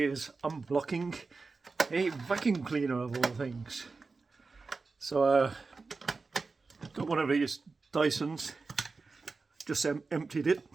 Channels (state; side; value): quieter; left; 4.1 dB